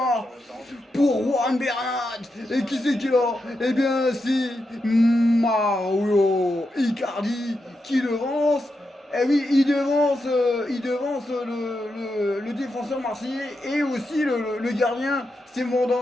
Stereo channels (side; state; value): both; normal; correlation 0.86